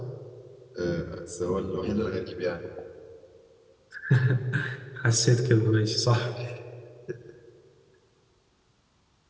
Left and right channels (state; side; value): identical; both; correlation 1.00